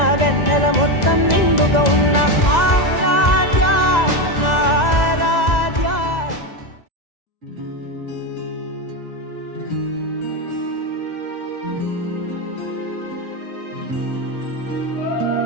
వెన్నెల మొత్తం నిండుగా ఉన్న ఆరాధ్య నా ఆరాధ్య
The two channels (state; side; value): late; right; 2.0 ms